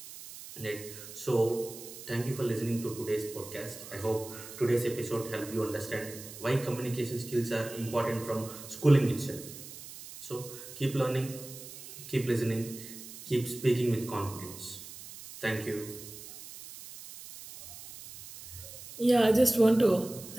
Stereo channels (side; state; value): right; noise; hiss, 14 dB below the sound